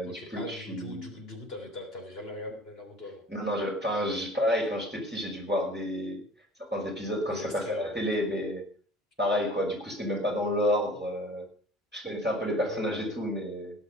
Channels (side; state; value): both; normal; correlation 0.46